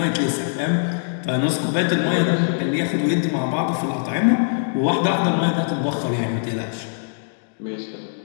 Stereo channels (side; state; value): right; silent; digital silence